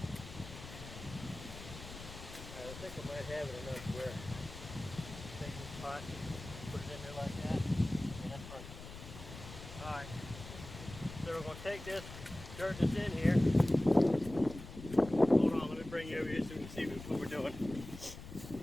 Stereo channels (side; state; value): left; noise; rumble, 13 dB below the sound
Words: I think I might have it enough where take this pot, put it in there like that, and that's perfect. Alright, so we're going to take this dirt that's in here. Hold on, let me bring you over here so we can see what we're doing.